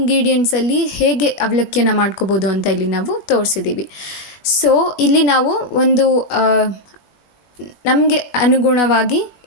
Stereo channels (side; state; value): right; late; 21 ms